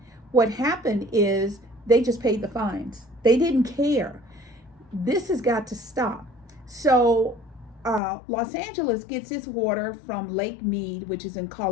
what happened is they just paid the fines. They didn't care. This has got to stop. So Los Angeles gets its water from Lake Mead, which is in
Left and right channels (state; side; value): drops out; right; at 8.0 s